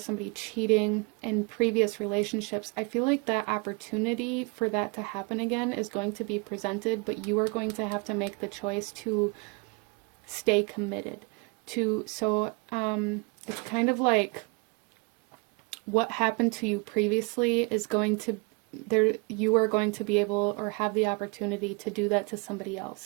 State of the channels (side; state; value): left; quieter; 30.5 dB